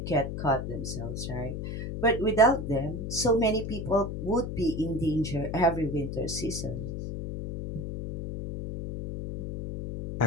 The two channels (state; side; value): noise; left; hum, 5 dB below the sound